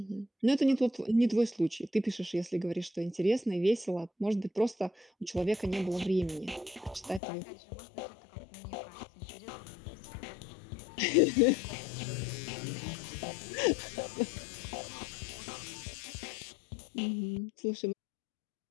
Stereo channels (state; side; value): drops out; right; at 7.2 s